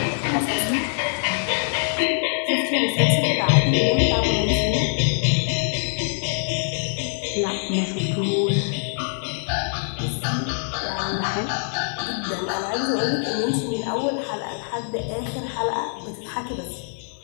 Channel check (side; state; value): right; silent; 63 dB below the other